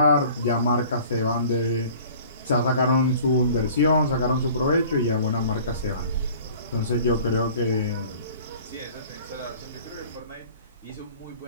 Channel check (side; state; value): both; inverted; correlation -0.48